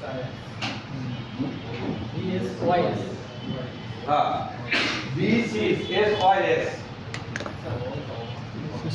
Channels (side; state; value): both; identical; correlation 1.00